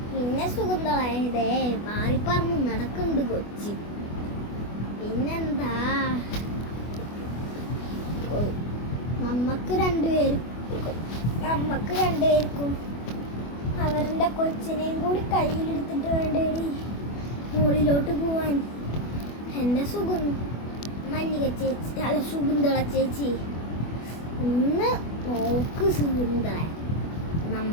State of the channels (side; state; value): right; late; 24 ms